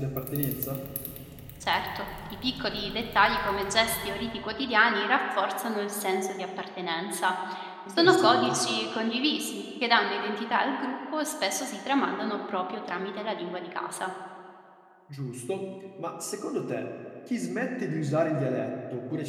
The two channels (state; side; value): identical; both; correlation 1.00